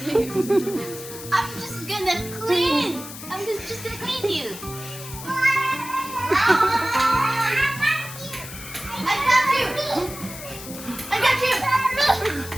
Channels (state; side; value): noise; left; hiss, 12 dB below the sound